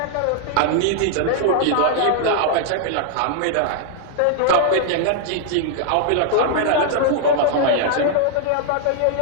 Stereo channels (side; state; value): both; different; correlation -0.01